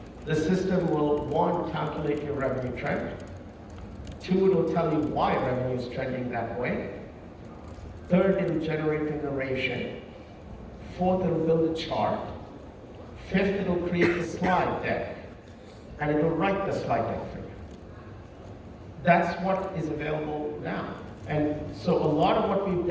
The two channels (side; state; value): both; identical; correlation 1.00